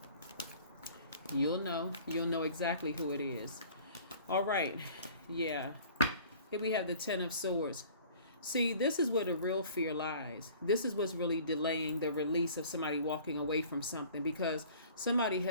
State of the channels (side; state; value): both; inverted; correlation -0.49